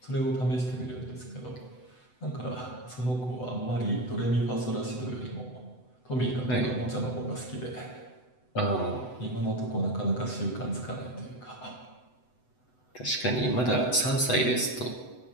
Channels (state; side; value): late; right; 8.0 ms